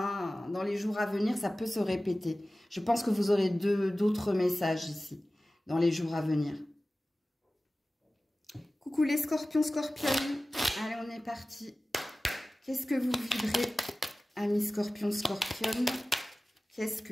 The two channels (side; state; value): both; normal; correlation 0.96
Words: dans les jours à venir, ça peut se répéter. Je pense que vous aurez d'autres messages ici. Dans les jours à venir. Coucou les scorpions, scorpionnes. Allez, on est parti. Qu'est-ce que vous vibrez, amis scorpions, scorpionnes? Qu'est-ce